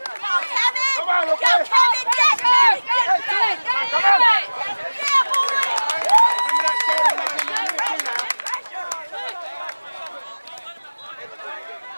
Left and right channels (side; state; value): both; inverted; correlation -1.00